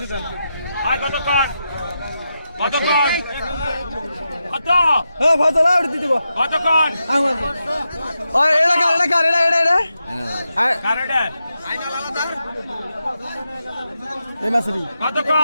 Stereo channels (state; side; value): inverted; both; correlation -0.87